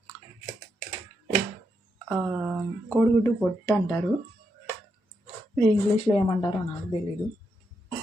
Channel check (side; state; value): both; normal; correlation 0.82